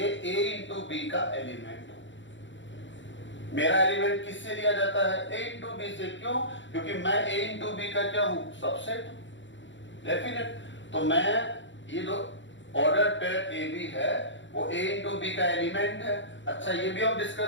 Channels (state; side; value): late; right; 0.54 ms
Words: A इंटू बी का एलिमेंट हो। मेरा एलिमेंट किससे लिया जाता है, A इंटू बी से। क्यों? क्योंकि मैं A इंटू बी का क्या हूं, सबसेट हूं, डेफिनेट। तो मैं ये जो ऑर्डर पेयर ए बी है वो A इंटू बी का एलिमेंट है। अच्छा, ये भी हम